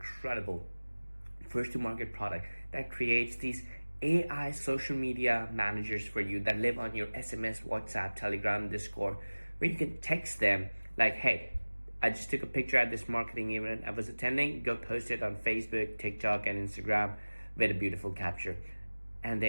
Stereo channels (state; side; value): inverted; both; correlation -1.00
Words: first-to-market product that creates these AI social media managers for you that live on your SMS, WhatsApp, Telegram, Discord, where you can text them like, hey, I just took a picture at this marketing event I was attending. Go post it on Facebook, TikTok, and Instagram with a beautiful capture. And